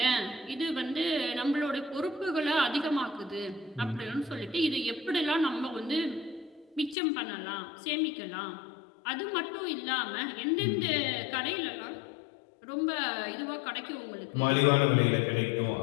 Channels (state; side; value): drops out; right; at 7.0 s